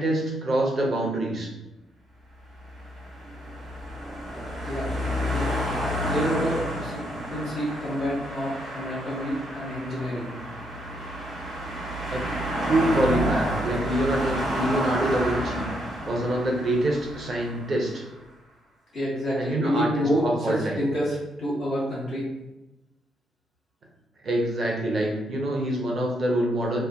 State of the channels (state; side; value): normal; both; correlation 0.75